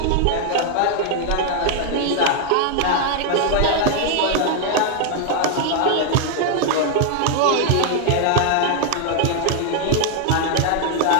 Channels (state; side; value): different; both; correlation 0.00